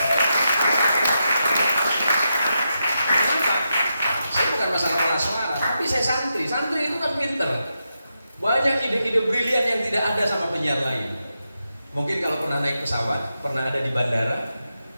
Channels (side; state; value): both; inverted; correlation -0.86